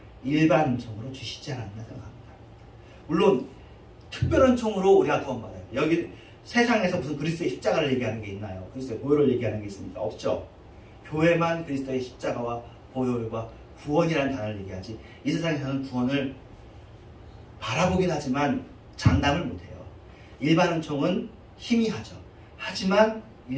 일반 은총으로 주시지 않았나 생각합니다. 물론 특별 은총으로 우리가 구원받아요. 여기 세상에서 무슨 그리스도의 십자가를 얘기하는 게 있나요? 그리스도의 보혈을 얘기하는 게 있습니까? 없죠. 교회만 그리스도의 십자가와 보혈과 구원이라는 단어를 얘기하지 이 세상에서는 구원을 바라보긴 하지만 장담을 못해요. 일반 은총은 희미하죠. 하지만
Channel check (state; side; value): identical; both; correlation 1.00